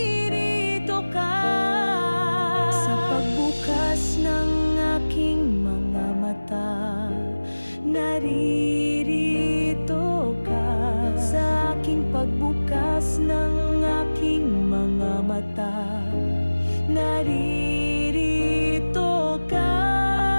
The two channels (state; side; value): inverted; both; correlation -1.00